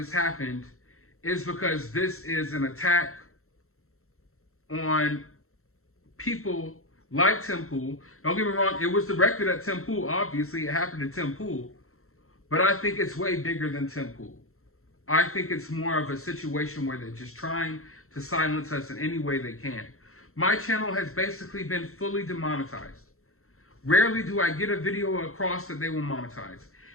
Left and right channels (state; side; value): late; right; 0.63 ms